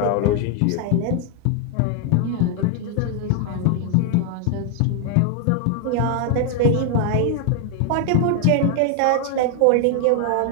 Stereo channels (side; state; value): both; different; correlation 0.00